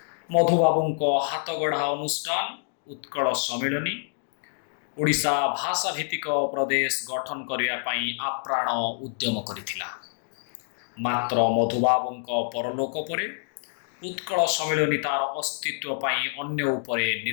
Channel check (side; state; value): right; silent; digital silence